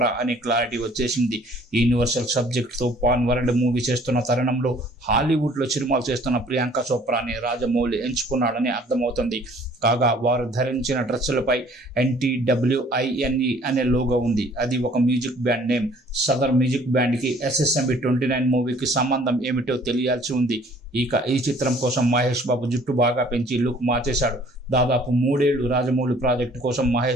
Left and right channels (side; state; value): both; normal; correlation 0.56